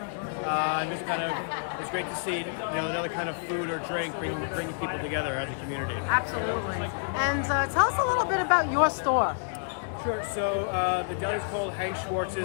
and just kind of, it's great to see, another kind of food or drink bringing people together as a community. Absolutely. And tell us a little bit about your store. Sure. So the deli is called Hank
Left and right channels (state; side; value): silent; right; digital silence